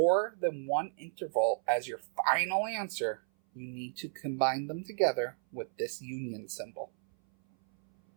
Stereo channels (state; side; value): silent; left; 56 dB below the other